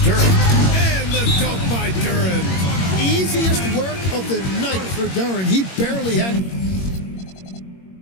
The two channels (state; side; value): late; right; 21 ms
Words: Duren. And the dunk by Duren. Easiest work of the night for Duren. He barely had